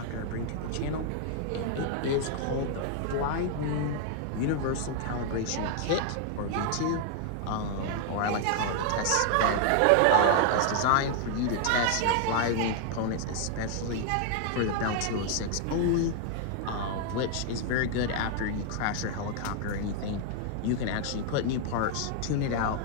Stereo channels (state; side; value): different; both; correlation 0.00